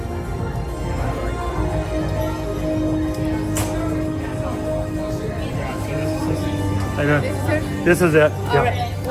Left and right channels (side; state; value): both; identical; correlation 1.00